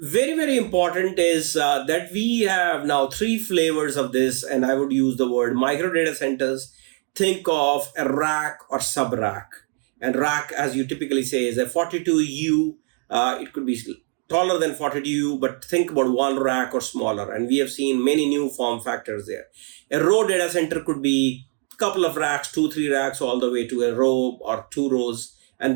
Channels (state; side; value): quieter; left; 37.2 dB